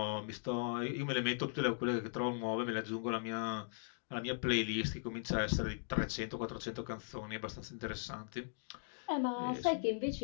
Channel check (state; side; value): silent; right; digital silence